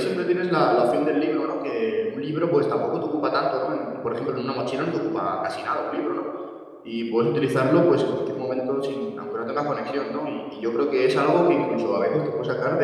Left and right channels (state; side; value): identical; both; correlation 1.00